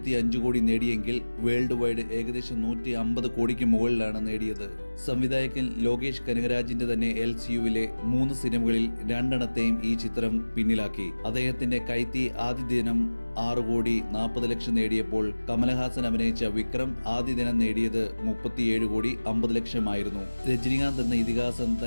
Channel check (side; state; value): both; inverted; correlation -1.00